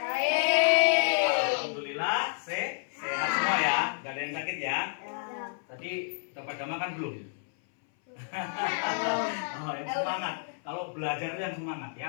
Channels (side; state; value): right; silent; 58 dB below the other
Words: Alhamdulillah, sehat semua ya. Gak ada yang sakit ya. Tadi udah pada makan belum? Oh, yang semangat. Kalau belajar itu yang semangat